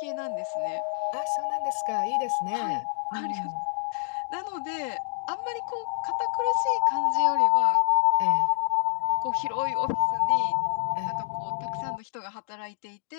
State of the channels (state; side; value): silent; right; digital silence